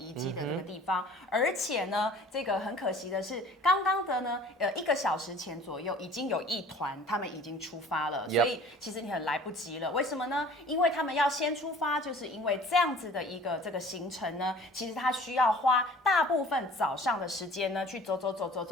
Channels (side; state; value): both; normal; correlation 0.48